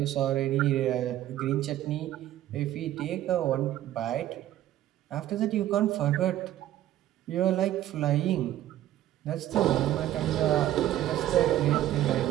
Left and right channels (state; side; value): quieter; left; 13.2 dB